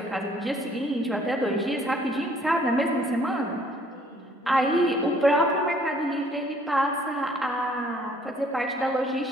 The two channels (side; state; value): both; normal; correlation 0.60